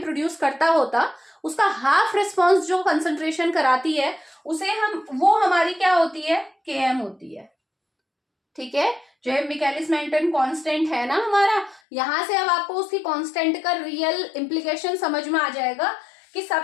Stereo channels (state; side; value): drops out; right; at 11.8 s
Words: प्रोड्यूस करता होता, उसका हाफ रिस्पॉन्स जो कंसंट्रेशन कराती है उसे हम, वो हमारी क्या होती है, Km होती है। ठीक है, जो है मिकेलिस मेंटन कांस्टेंट है ना हमारा, यहां से अब आपको उसकी कांस्टेंट का रियल इंप्लीकेशन समझ में आ जाएगा कि